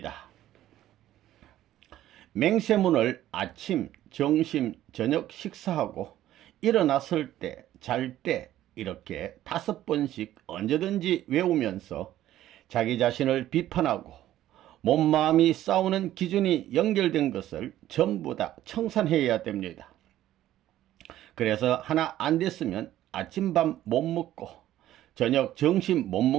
맹세문을 아침, 점심, 저녁 식사하고 일어났을 때, 잘 때 이렇게 5번씩 언제든지 외우면서 자기 자신을 비판하고 몸 마음이 싸우는 기준이 연결된 것을 전부 다 청산해야 됩니다. 그래서 하나 안 됐으면 아침밤 못 먹고 저녁 점심 못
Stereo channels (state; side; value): quieter; left; 13.3 dB